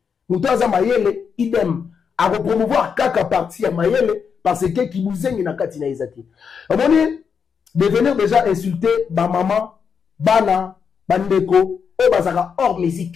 muto aza mayele idem à promouvoir kaka partie ya mayele parce que ki bozengi na katinaye zati on dit devenir déjà insulter ba maman bana bandeko et bazaka hors musique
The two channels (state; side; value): quieter; right; 6.5 dB